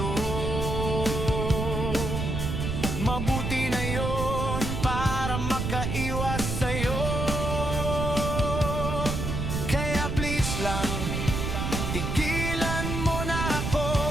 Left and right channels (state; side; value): noise; right; rumble, 2 dB below the sound